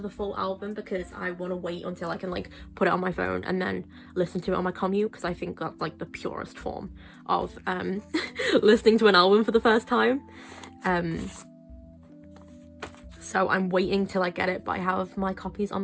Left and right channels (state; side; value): identical; both; correlation 1.00